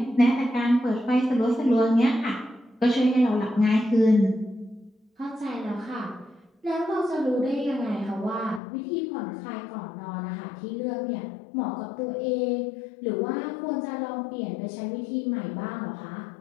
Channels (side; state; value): right; drops out; at 8.6 s